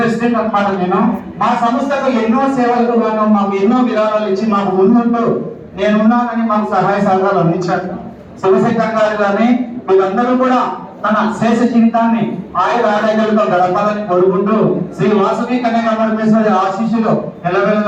అన్నమాట. నేను మా సంస్థకు ఎన్నో సేవలకు గాను మాకు ఎన్నో విరాళాలు ఇచ్చి మాకు ముందుంటూ నేనున్నానని మాకు సహాయ సహకారాలు అందించారు. శివశంకర్ గారు కానీ వీళ్ళందరూ కూడా తన శేష జీవితాన్ని ఆయుర ఆరోగ్యాలతో గడపాలని కోరుకుంటూ శ్రీ వాసవి కన్యకా పరమేశ్వరి ఆశీస్సులు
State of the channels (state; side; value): identical; both; correlation 1.00